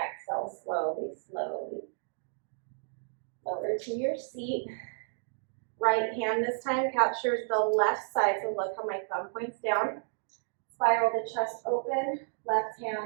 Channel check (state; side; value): silent; left; digital silence